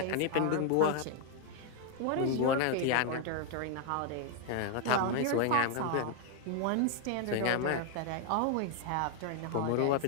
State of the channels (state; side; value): different; both; correlation 0.00